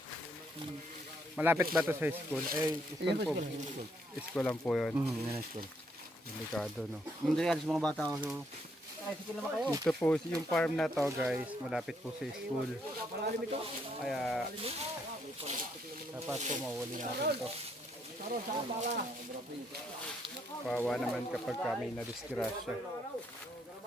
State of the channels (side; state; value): both; normal; correlation 0.73